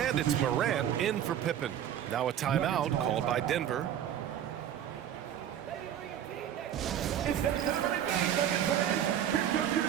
it's Morant in for Pippen. Now a timeout called by Denver. It's that time of the game, Nuggets fans. Here comes your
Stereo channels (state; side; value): quieter; left; 10.2 dB